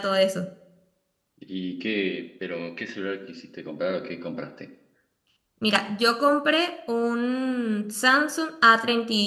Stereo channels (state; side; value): identical; both; correlation 1.00